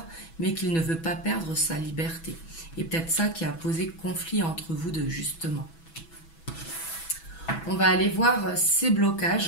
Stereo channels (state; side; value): late; right; 6.1 ms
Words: mais qu'il ne veut pas perdre sa liberté. Et peut-être ça qui a posé conflit entre vous deux, justement. On va aller voir ces